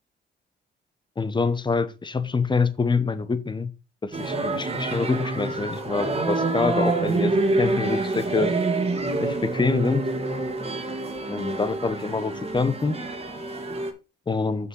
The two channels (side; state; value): both; normal; correlation 0.65